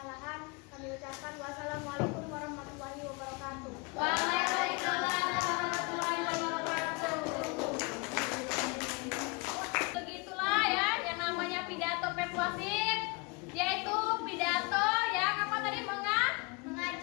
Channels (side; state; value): right; quieter; 29.0 dB